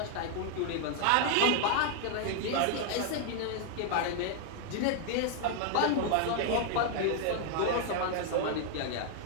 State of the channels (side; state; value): both; different; correlation 0.00